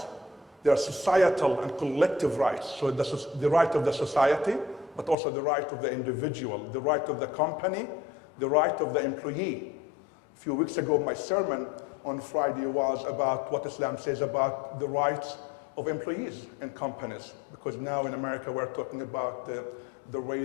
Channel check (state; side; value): drops out; right; at 5.2 s